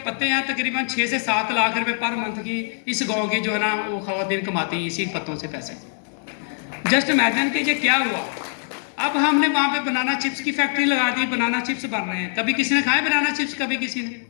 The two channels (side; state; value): right; silent; digital silence